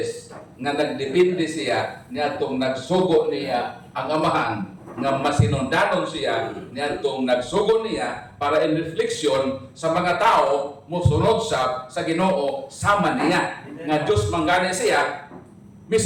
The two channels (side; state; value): both; identical; correlation 1.00